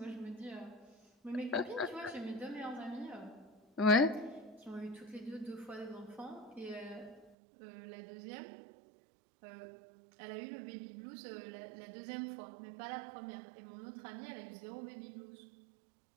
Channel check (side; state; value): left; drops out; at 7.3 s